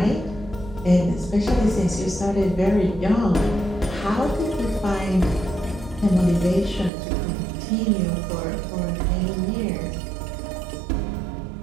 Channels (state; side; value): drops out; left; at 6.9 s